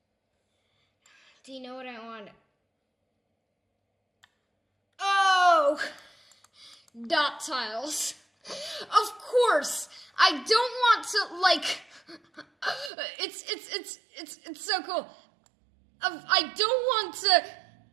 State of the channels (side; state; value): left; drops out; at 12.9 s